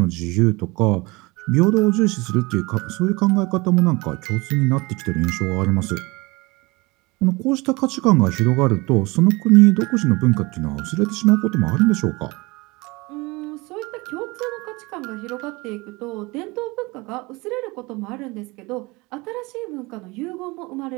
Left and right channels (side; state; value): left; quieter; 24.2 dB